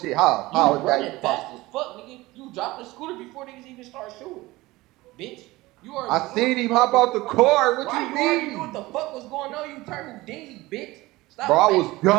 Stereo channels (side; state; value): left; quieter; 19.7 dB